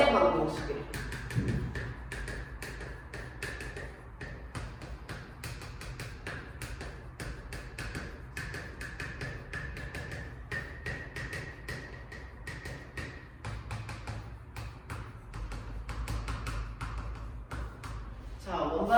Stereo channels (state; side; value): identical; both; correlation 1.00